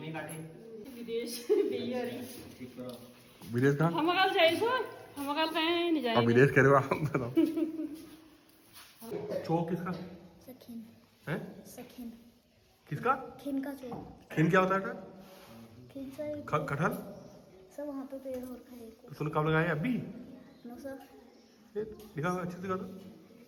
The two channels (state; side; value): identical; both; correlation 1.00